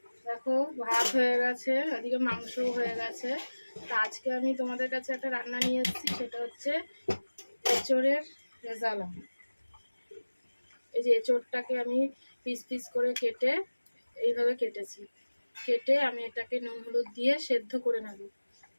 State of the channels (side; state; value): both; inverted; correlation -1.00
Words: দেখো ভাত হয়ে গেছে, এদিকে মাংসও হয়ে গেছে। তা আজকে আমি তোমাদের কাছে একটা রান্না নিয়ে এসেছি, সেটা হচ্ছে এঁচোড়ের রেজালা। এই যে এঁচোড়টাকে আমি পিস পিস করে কেটে এইভাবে কেটেছি। কেটে আমি এটাকে নুন হলুদ দিয়ে সেদ্ধ করে নেব।